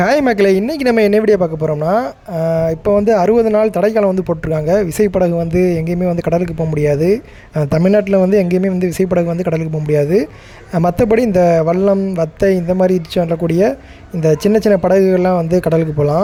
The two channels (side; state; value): both; identical; correlation 1.00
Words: Hi மக்களே, இன்றைக்கி நம்ம என்ன வீடியோ பார்க்க போகிறோம்னா, இப்போ வந்து 60 நாள் தடைக்காலம் வந்து போட்டிருக்காங்க. விசைப்படகு வந்து எங்கேயுமே வந்து கடலுக்கு போக முடியாது. தமிழ்நாட்டில் வந்து எங்கேயுமே வந்து விசைப்படகு வந்து கடலுக்கு போக முடியாது. மற்றபடி இந்த வல்லம், வத்தை இந்த மாதிரி சொல்லக்கூடிய இந்த சின்ன சின்ன படகுகள்லாம் வந்து கடலுக்கு